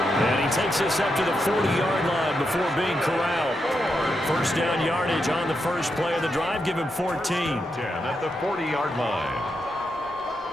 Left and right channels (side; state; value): both; normal; correlation 0.84